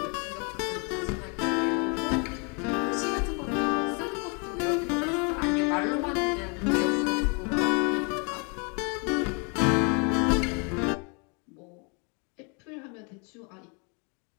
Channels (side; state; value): right; quieter; 34.6 dB